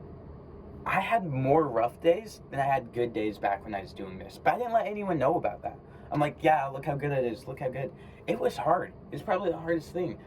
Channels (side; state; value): both; identical; correlation 1.00